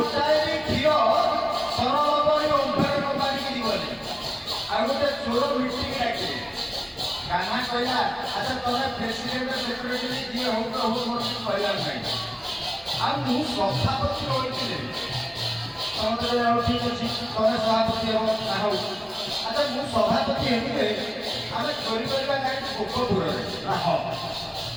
ବି କ୍ଷୀର ସରଳବଣୀ ଓମ୍ଫେଡ କମ୍ପାନୀକି ଯିବନି। ଆଉ ଗୋଟେ ଚୋର ମିଟିଂ ଡାକିଲେ କାହ୍ନା କହିଲା ଆଚ୍ଛା ତମେ ପ୍ରେସିଡେଣ୍ଟ ସେକ୍ରେଟାରୀ ଯିଏ ହଉ ତ ହଉ ମୋର କିଛି କହିବାର ନାହିଁ ଆଉ ମୁଁ ସଭାପତି ରହିଥିଲେ ସମସ୍ତେ ହଉ ଠିକ ଅଛି ତମେ ସଭାପତି ହେବ ନା ହଉ ଆଚ୍ଛା ମୁଁ ସଭାପତି ହେଲେ ଆମେ ଚୋରି କରିବା କାହିଁକି ଗୋପପୁରରେ ନା ହଁ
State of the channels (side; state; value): both; identical; correlation 1.00